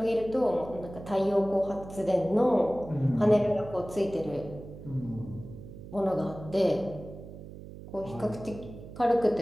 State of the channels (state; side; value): noise; right; hum, 14 dB below the sound